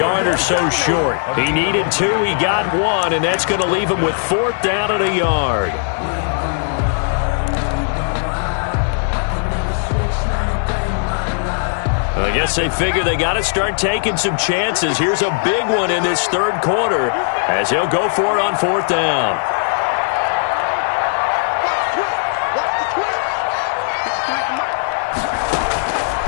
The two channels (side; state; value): right; silent; digital silence